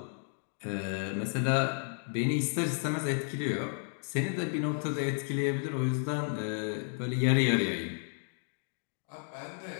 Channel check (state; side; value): silent; right; 56 dB below the other